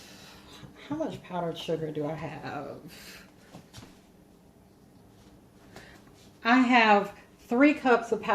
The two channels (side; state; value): both; identical; correlation 1.00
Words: how much powdered sugar do I have? I have 3 cups of